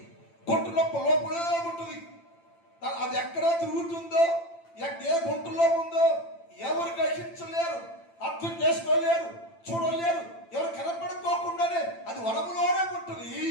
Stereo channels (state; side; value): late; right; 8.9 ms